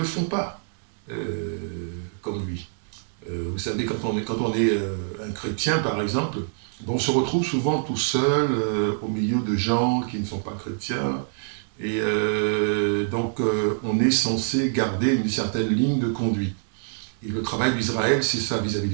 font pas comme lui. Vous savez, quand on est un chrétien, par exemple, on se retrouve souvent tout seul au milieu de gens qui ne sont pas chrétiens. Et donc, on est censé garder une certaine ligne de conduite. Et le travail d'Israël, c'est ça vis-à-vis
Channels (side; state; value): left; silent; 62 dB below the other